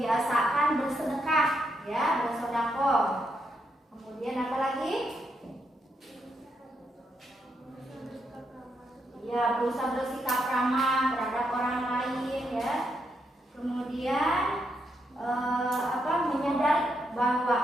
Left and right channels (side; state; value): both; normal; correlation 0.80